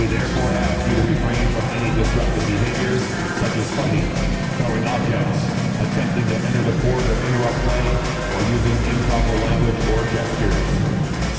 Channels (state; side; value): identical; both; correlation 1.00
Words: therefore ask you to refrain from any disruptive behaviors, such as fighting, throwing objects, attempting to enter the court or interrupt play, or using improper language or gestures.